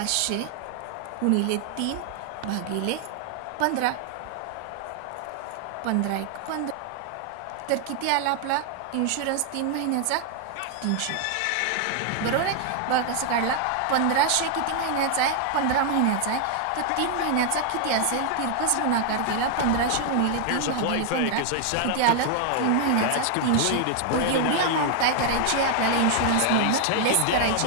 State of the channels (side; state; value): both; different; correlation 0.00